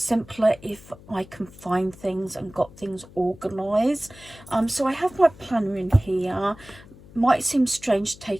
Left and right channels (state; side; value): noise; left; hum, 21 dB below the sound